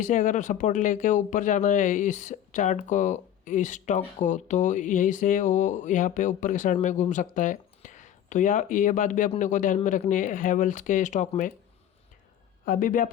से अगर सपोर्ट लेके ऊपर जाना है इस चार्ट को, इस स्टॉक को, तो यहीं से वो यहाँ पे ऊपर के साइड में घूम सकता है। तो ये बात भी अपने को ध्यान में रखनी है हैवेल्स के स्टॉक में। अभी भी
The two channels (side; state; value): right; quieter; 10.5 dB